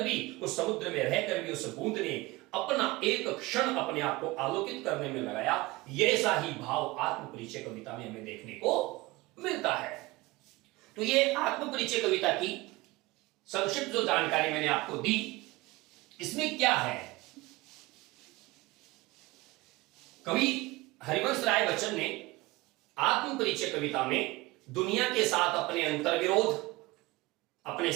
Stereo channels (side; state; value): left; quieter; 21.3 dB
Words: भी, उस समुद्र में रहकर भी उस बूंद ने अपना एक क्षण अपने आप को आलोकित करने में लगाया। ऐसा ही भाव आत्मपरिचय कविता में हमें देखने को मिलता है। तो ये आत्मपरिचय कविता की संक्षिप्त जो जानकारी मैंने आपको दी, इसमें क्या है? कवि हरिवंश राय बच्चन ने आत्मपरिचय कविता में दुनिया के साथ अपने अंतर्विरोध, अपने